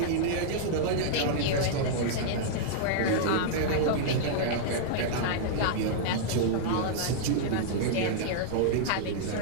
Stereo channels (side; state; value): both; different; correlation -0.02